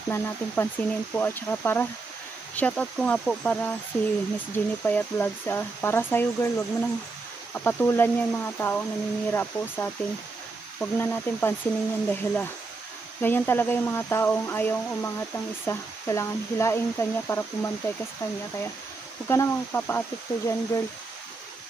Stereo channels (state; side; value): quieter; left; 3.8 dB